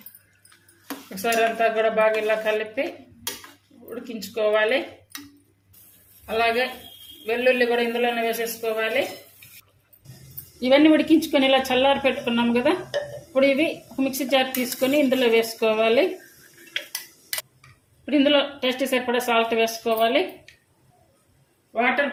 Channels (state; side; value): identical; both; correlation 1.00